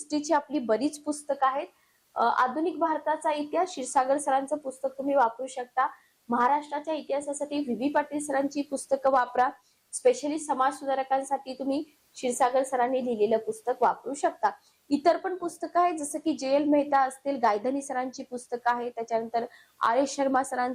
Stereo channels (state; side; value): identical; both; correlation 1.00